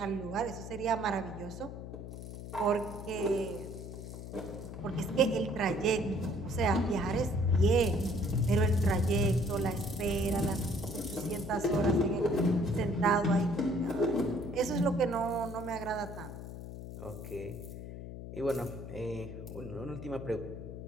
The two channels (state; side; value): noise; left; hum, 10 dB below the sound